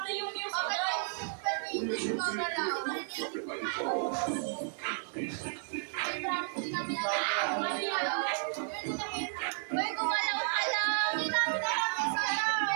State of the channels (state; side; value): silent; left; 56 dB below the other